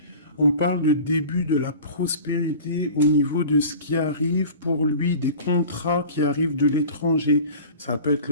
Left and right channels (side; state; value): both; inverted; correlation -0.39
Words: On parle de début de la prospérité au niveau de ce qui arrive pour lui, des contrats qui arrivent de l'étranger. Ça peut être